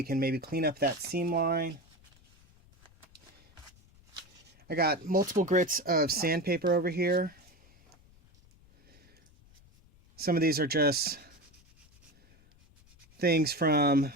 can maybe clean up that seam line. I got multiple grits of sandpaper over here. Some of these are just things from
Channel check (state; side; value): noise; left; rumble, 28 dB below the sound